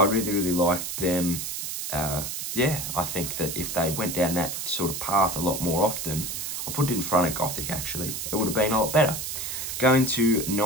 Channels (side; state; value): right; noise; hiss, 5 dB below the sound